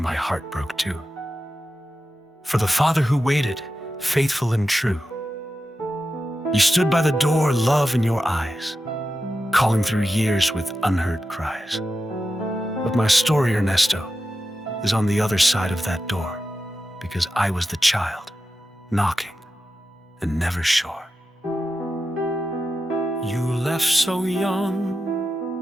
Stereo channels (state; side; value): normal; both; correlation 0.91